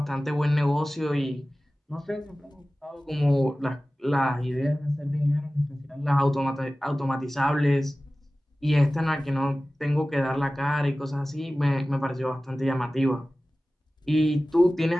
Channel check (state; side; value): normal; both; correlation 0.97